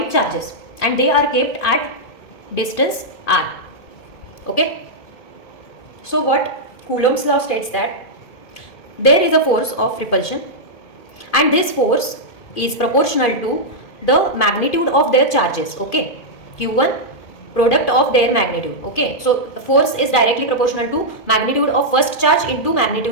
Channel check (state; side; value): late; right; 2.5 ms